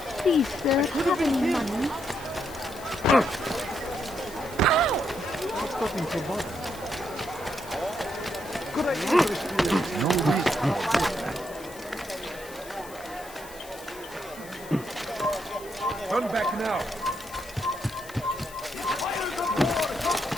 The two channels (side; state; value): left; noise; hiss, 18 dB below the sound